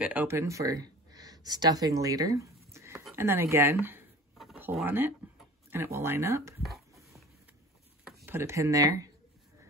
it open for stuffing later. And then again, pull on it and it will line up. Put a pin there.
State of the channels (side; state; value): both; normal; correlation 0.41